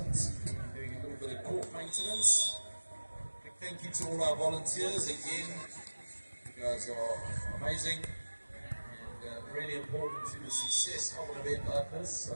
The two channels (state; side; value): inverted; both; correlation -1.00